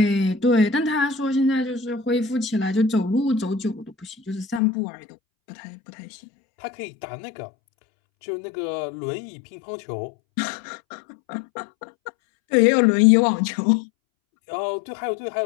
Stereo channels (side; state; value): right; drops out; at 4.6 s